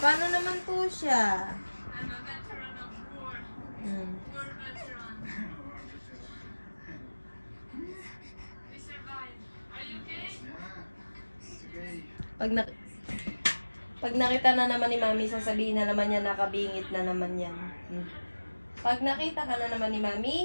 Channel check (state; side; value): inverted; both; correlation -1.00